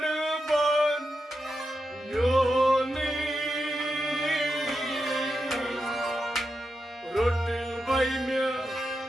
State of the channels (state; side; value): normal; both; correlation 0.88